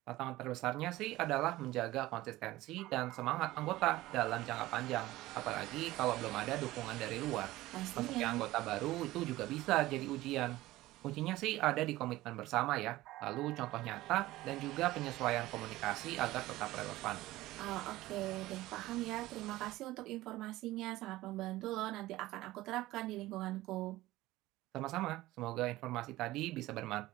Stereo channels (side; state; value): left; quieter; 17.3 dB